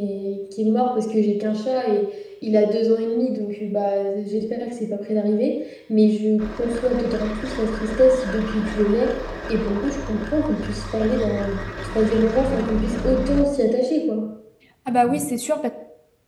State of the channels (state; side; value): identical; both; correlation 1.00